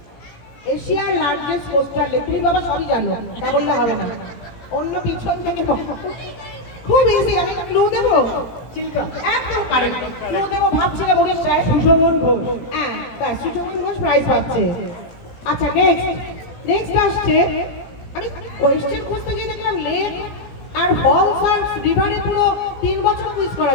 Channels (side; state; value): right; late; 17 ms